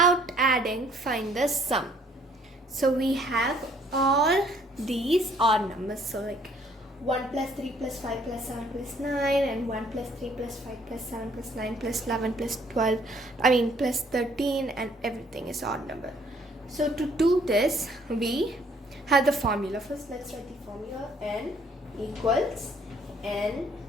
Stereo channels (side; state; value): both; normal; correlation 0.62